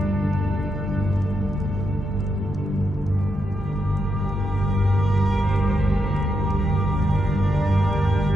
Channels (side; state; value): both; normal; correlation 0.83